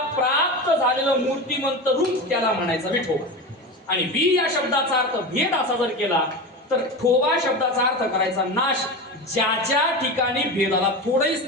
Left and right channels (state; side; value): normal; both; correlation 0.25